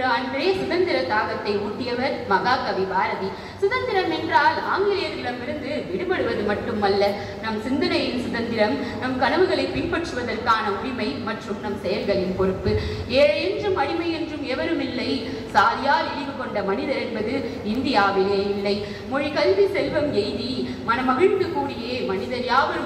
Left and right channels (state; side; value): identical; both; correlation 1.00